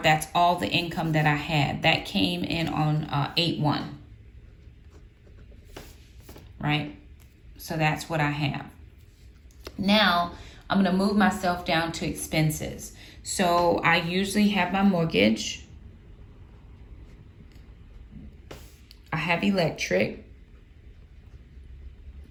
that's all the income that I had. That came in on 8/1, right? So that's what I have. Now, I'm going to move myself down to expenses. So I usually have my mortgage. I have electric.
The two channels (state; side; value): identical; both; correlation 1.00